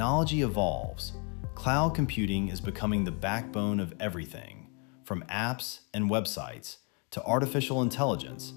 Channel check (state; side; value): quieter; right; 36.3 dB